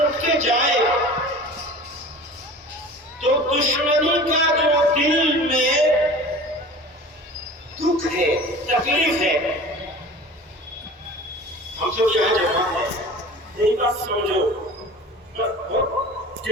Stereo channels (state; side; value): normal; both; correlation 0.40